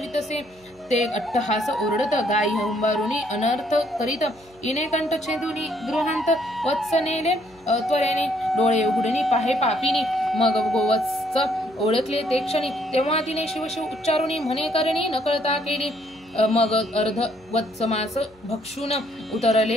ते अट्टहास ओरडत. गाई हुंबारुनी अनर्थ करीत. इने कंठ छेदुनी गृहांत. वत्स नेले त्वरेने. डोळे उघडणी पाहे पापिनी. मग गोवत्स ओळखले ते क्षणी. तेव्हा तिने शिवशिव उच्चारुनी म्हणे करणी नकळता केली. मग अर्ध वत्समास भक्षून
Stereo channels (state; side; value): noise; left; hum, 29 dB below the sound